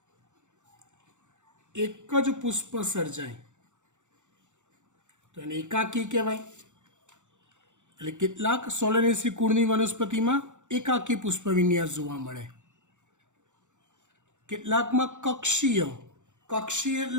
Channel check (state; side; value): late; left; 0.85 ms